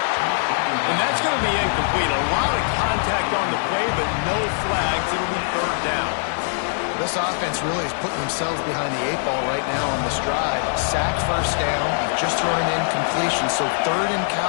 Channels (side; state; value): right; silent; digital silence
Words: And that's going to be incomplete. A lot of contact on the play, but no flags. It'll be 3rd down. This offense really is putting themselves behind the 8 ball right now on this drive. Sack first down, just thrown an incompletion. So 3rd in